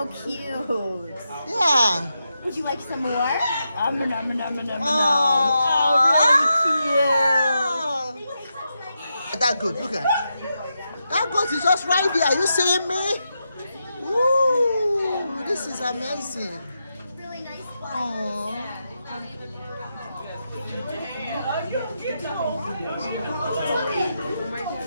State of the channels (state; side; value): inverted; both; correlation -0.86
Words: cute. Yeah. Would you like some more? Nom, nom, nom, nom, nom, nom. Oh, really cute. That good, look at it. That goat is just right there. Are you seeing me? Ooh, this is amazing. Really nice one. Aww. Ooh. No.